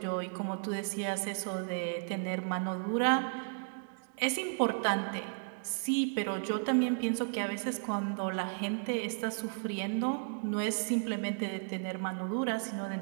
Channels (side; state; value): left; silent; digital silence